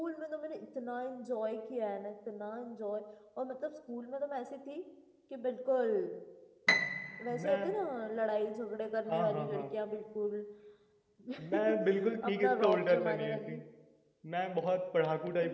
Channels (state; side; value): identical; both; correlation 1.00